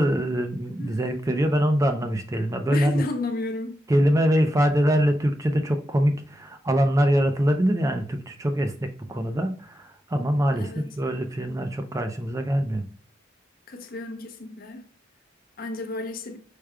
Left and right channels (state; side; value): normal; both; correlation 0.88